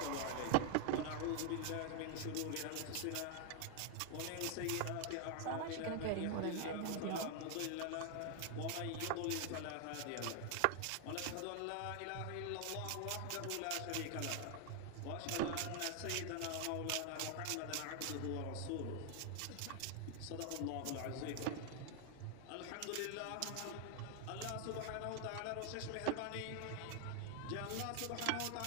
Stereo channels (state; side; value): different; both; correlation 0.00